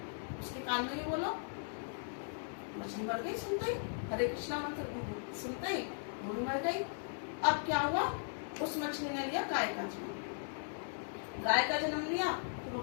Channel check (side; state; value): right; silent; digital silence